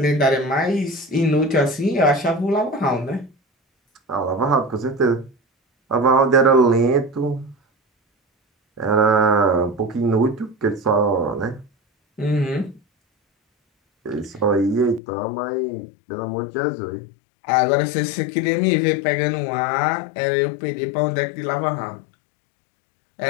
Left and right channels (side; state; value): right; drops out; at 15.0 s